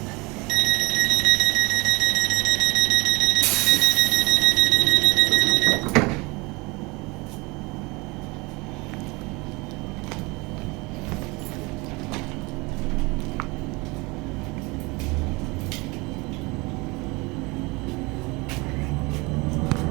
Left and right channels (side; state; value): left; quieter; 25.7 dB